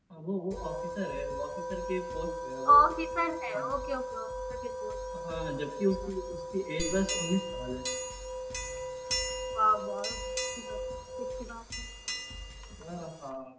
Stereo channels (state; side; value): identical; both; correlation 1.00